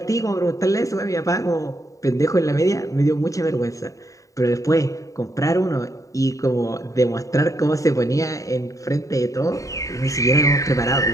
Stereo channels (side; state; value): right; late; 0.16 ms